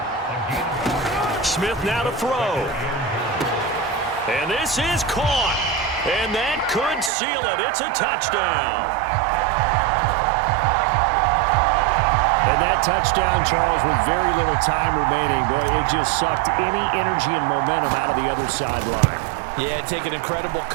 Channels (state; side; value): drops out; left; at 7.1 s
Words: Smith now to throw. And this is caught. And that could seal it. It's a touchdown. And that touchdown, Charles, with very little time remaining, boy, it just sucked any energy and momentum out of the other sideline. Yeah, take an incredible